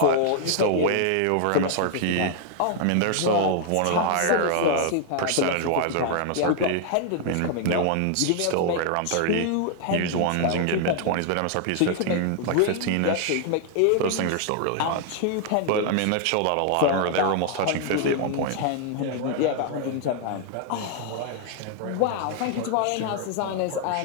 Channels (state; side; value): different; both; correlation 0.00